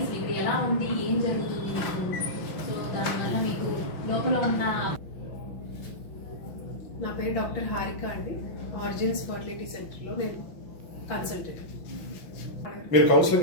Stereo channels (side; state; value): right; late; 6.0 ms